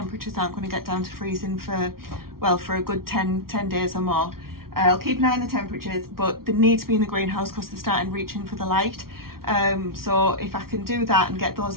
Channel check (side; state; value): left; late; 0.93 ms